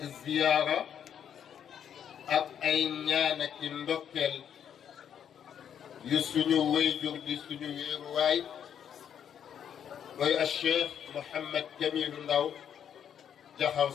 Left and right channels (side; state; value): right; quieter; 8.8 dB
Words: ziyaara ak ay ñaan ak i ndokkeel yu suñu wayjur di suñu wéeruwaay mooy a Cheikh Mouhamed Jamilu Ndaw Jaxaw